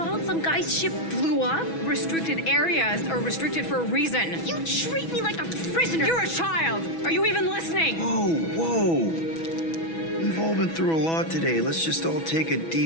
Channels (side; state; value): right; late; 6.1 ms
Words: some guy's ship blew up. Restricted areas are restricted for a reason. You treat me like a prisoner. You're a child! Are you even listening? Whoa. We've all been through a lot today. Let's just all take a